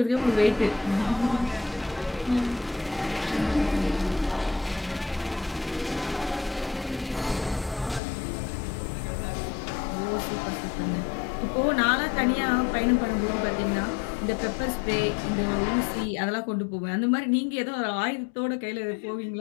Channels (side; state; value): right; drops out; at 8.0 s